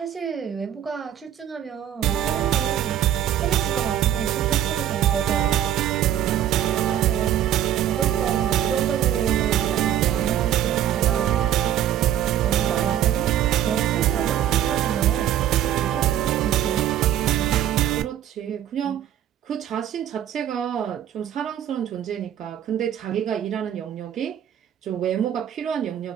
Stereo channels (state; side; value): quieter; left; 10.9 dB